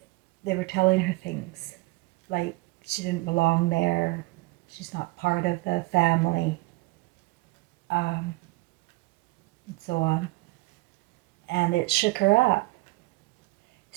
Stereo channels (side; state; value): left; quieter; 22.2 dB